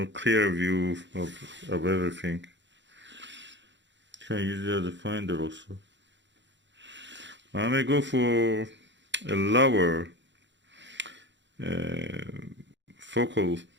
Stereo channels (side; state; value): left; late; 0.53 ms